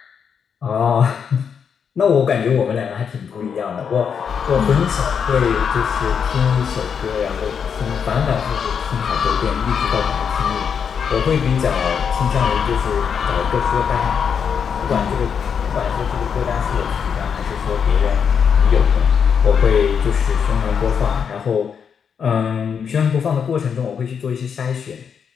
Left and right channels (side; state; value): right; quieter; 7.0 dB